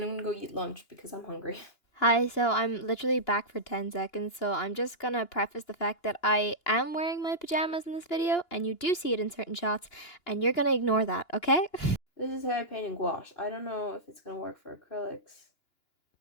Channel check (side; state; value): right; late; 2.8 ms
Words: I'm gonna go eat lunch because I'm hungry. Hi, so I'm literally back for 10 seconds, so I'm just gonna preface the fact that I am wearing my pajamas in this video, and you do see it in certain shots, and you're gonna ignore that, okay? This is how I paint in gouache. I don't know if it's gonna work for acrylics,